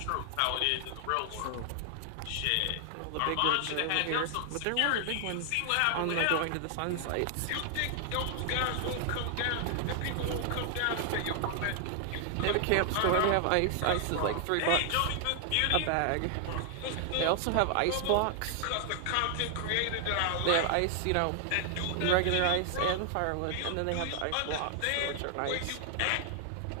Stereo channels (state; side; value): different; both; correlation 0.00